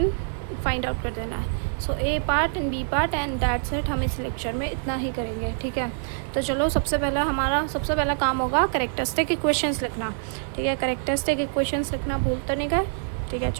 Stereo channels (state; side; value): silent; left; digital silence